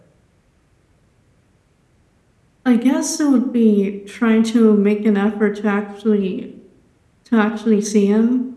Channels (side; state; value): both; identical; correlation 1.00